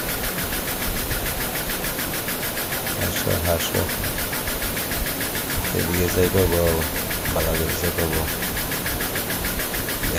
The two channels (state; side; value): identical; both; correlation 1.00